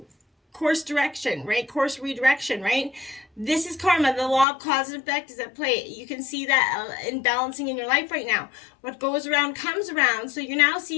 course direction, right? Course redirection, right? This is karma. The law of cause and effect is at play. You can see that in balancing in your life right now. What goes around comes around. So you're now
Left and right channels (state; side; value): drops out; right; at 4.5 s